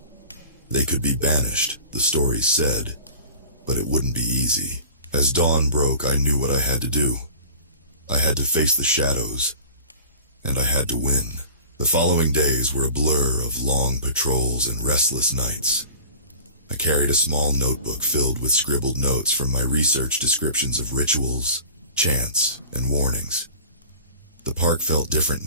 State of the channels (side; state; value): both; inverted; correlation -0.41